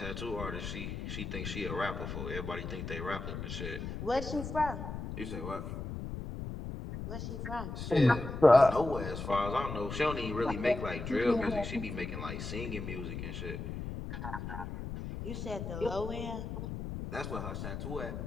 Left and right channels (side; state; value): left; noise; rumble, 6 dB below the sound